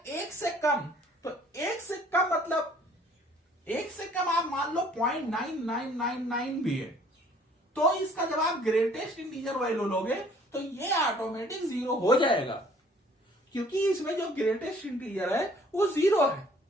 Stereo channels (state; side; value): normal; both; correlation 0.57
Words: 1 से कम। तो 1 से कम मतलब 1 से कम आप मान लो 0.9999 भी है, तो इसका जब आप ग्रेटेस्ट इंटीजर वैल्यू लोगे तो ये ऑटोमेटिक 0 हो जाएगा, क्योंकि इसमें जो ग्रेटेस्ट इंटीजर है वो 0 है।